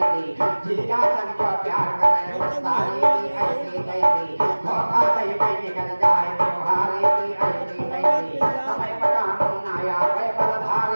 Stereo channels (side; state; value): both; inverted; correlation -1.00